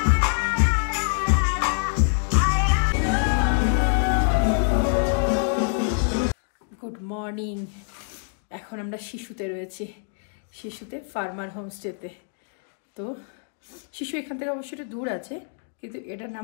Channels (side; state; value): right; silent; 62 dB below the other